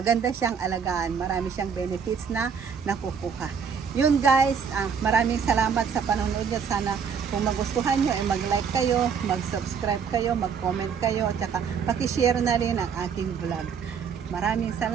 siyang alagaan. Marami siyang benefits na nakukuha. Yun guys, maraming salamat sa panonood niyo. Sana kung magustuhan nyo, mag-like kayo, mag-subscribe kayo, mag-comment kayo, at saka pakishare na rin ang aking vlog. Maraming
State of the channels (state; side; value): quieter; left; 6.7 dB